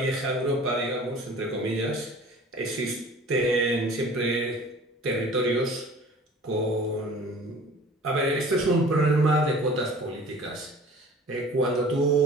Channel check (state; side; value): normal; both; correlation 0.45